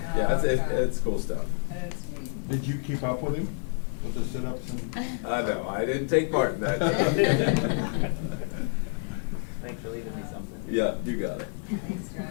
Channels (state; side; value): silent; right; 59 dB below the other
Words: yeah, it's cool stuff. That's neat. Did you keep up with him with the sit-ups and? No, I didn't take part in that. Thanks for leaving me something. Yeah, you got it. Thanks,